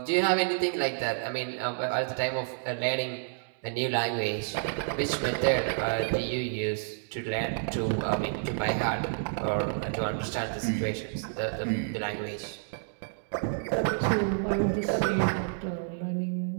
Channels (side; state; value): left; silent; digital silence